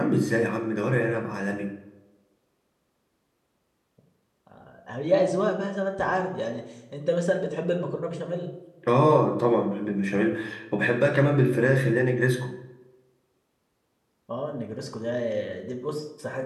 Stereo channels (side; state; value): both; identical; correlation 1.00